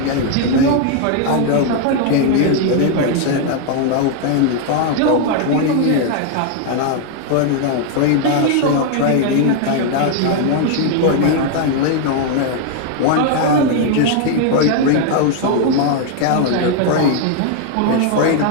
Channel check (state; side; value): different; both; correlation 0.00